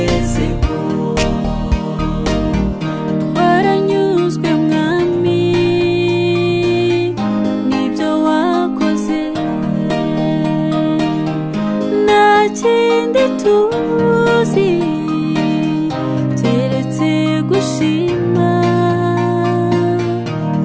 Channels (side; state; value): both; identical; correlation 1.00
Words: Twaranyuzwe mwami n'ibyo wakoze, nta kindi tuzi keretse gushima.